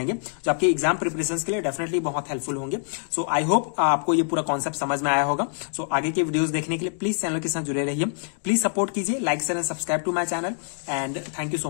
जो आपके एग्जाम प्रिपरेशन के लिए डेफिनेटली बहुत हेल्पफुल होंगे। सो आई होप आपको ये पूरा कॉन्सेप्ट समझ में आया होगा। सो आगे के वीडियोस देखने के लिए प्लीज चैनल के साथ जुड़े रहिए, प्लीज सपोर्ट कीजिए, like share and subscribe to my channel and thank you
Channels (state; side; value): silent; right; digital silence